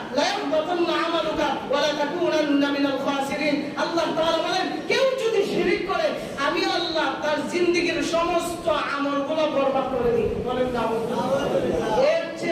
লা ইয়াহবাতান্না আমালুকা ওয়া লা তাকুনান্না মিনাল খাসিরিন। আল্লাহ তাআলা বলেন কেউ যদি শিরক করে আমি আল্লাহ তার জিন্দেগীর সমস্ত আমলগুলো বরবাদ করে দিই। বলেন নাউযুবিল্লাহ। এর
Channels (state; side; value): identical; both; correlation 1.00